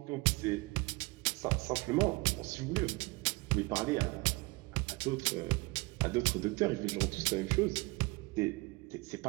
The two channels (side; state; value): left; quieter; 25.3 dB